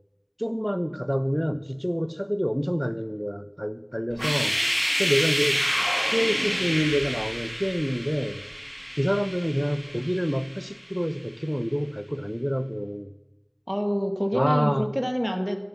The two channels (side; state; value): both; identical; correlation 1.00